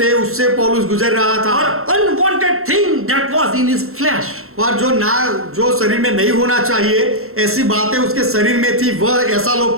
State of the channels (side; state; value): left; late; 0.62 ms